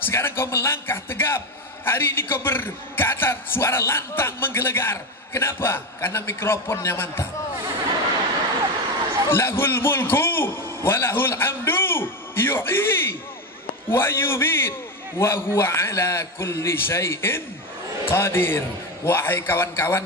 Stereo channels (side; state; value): both; normal; correlation 0.16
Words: sekarang kau melangkah tegap. Hari ini kau berkata, suara lantang menggelegar. Kenapa? Karena mikrofonnya mantap. Lahul mulku walahul hamdu yuhyi wa yumit wa huwa ala kulli syai'in qadir. Wahai